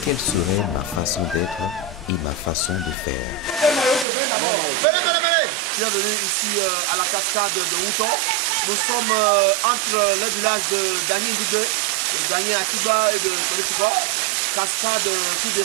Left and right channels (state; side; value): drops out; left; at 4.0 s